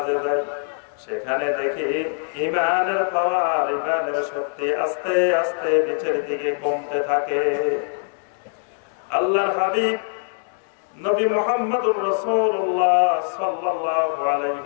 যাই, সেখানে দেখি ঈমানের পাওয়ার, ঈমানের শক্তি আস্তে আস্তে নিচের দিকে কমতে থাকে। আল্লাহর হাবিব নবী মুহাম্মদুর রাসূলুল্লাহ সাল্লাল্লাহু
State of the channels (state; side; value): silent; right; digital silence